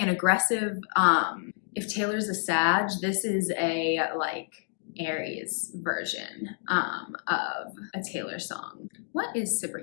an aggressive, if Taylor's a Sag, this is a like Aries version of a Taylor song. What is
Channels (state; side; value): silent; right; 59 dB below the other